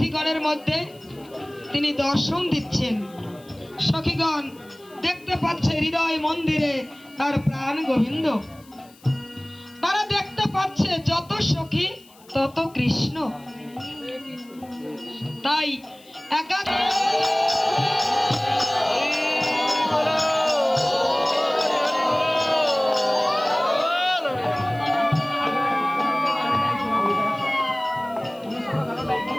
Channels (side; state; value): left; noise; hiss, 27 dB below the sound